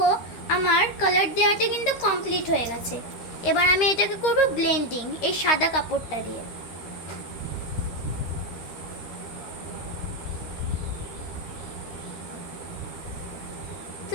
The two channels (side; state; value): right; late; 12 ms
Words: আমার কালার দেওয়াটা কিন্তু কমপ্লিট হয়ে গেছে। এবার আমি এটাকে করব ব্লেন্ডিং এই সাদা কাপড়টা দিয়ে। তো